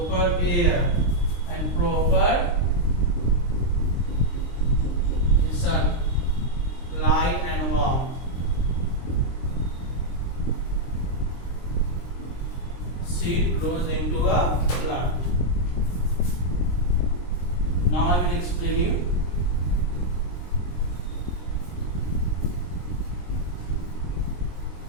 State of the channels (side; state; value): right; late; 23 ms